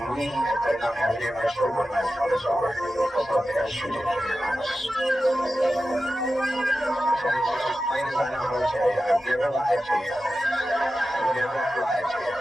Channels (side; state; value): both; normal; correlation 0.93